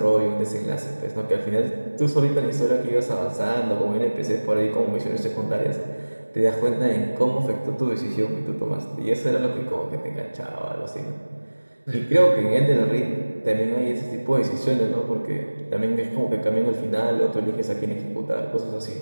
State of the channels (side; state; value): both; inverted; correlation -1.00